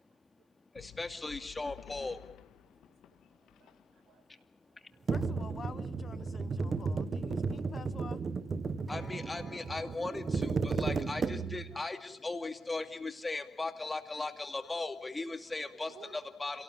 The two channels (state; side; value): normal; both; correlation 0.87